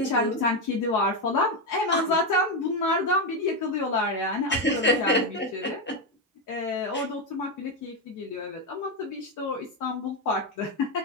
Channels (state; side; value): normal; both; correlation 0.08